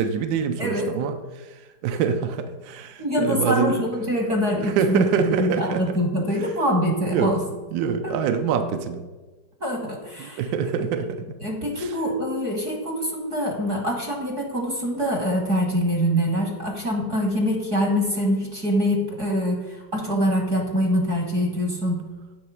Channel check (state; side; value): late; left; 4.7 ms